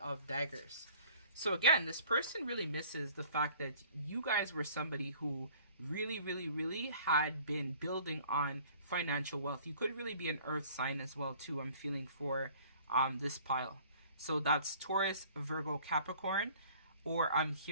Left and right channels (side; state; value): both; inverted; correlation -0.53